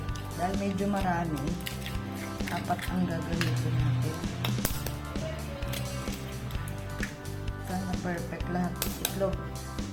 Dahil medyo marami, 4 ang gagamitin natin. Sana perfect lahat. Itlog.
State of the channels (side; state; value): both; identical; correlation 1.00